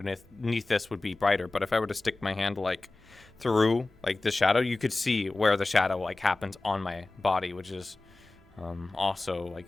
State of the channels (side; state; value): right; quieter; 3.1 dB